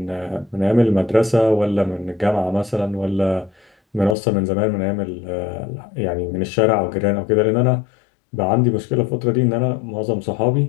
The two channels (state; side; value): drops out; right; at 4.2 s